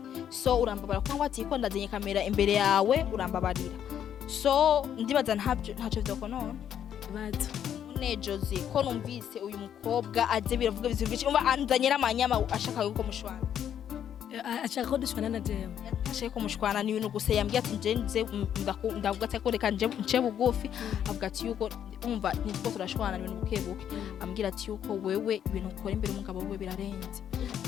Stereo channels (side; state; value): right; quieter; 9.5 dB